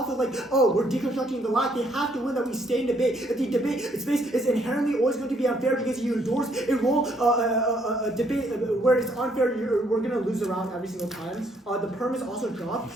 of like, oh, we're deconstructing the lack, they have to win that we stay in debate. If the debate space is inherently always going to be unfair because you endorse a role, a debate where it's unfair, we're going to lose around every single time. The perm is also dropped.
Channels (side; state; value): both; normal; correlation 0.68